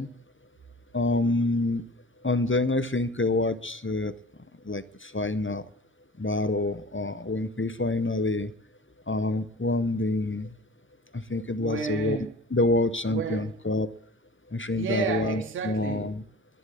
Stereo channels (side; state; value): both; normal; correlation 0.41